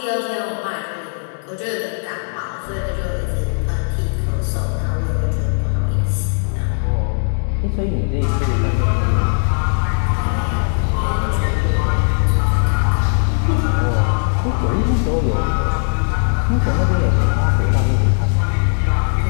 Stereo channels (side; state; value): right; silent; digital silence